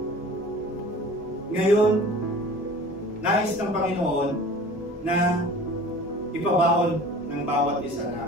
Ngayon, nais ng Panginoon na ipabaon ng bawat isa na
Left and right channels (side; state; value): both; normal; correlation 0.43